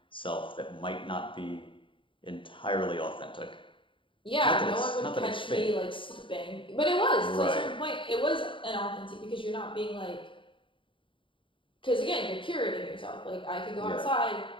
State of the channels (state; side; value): late; right; 0.25 ms